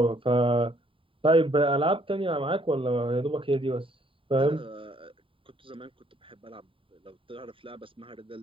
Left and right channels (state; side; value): late; left; 0.25 ms